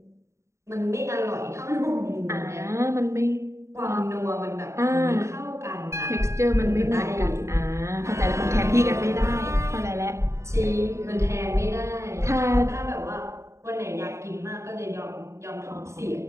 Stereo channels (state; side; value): late; left; 0.14 ms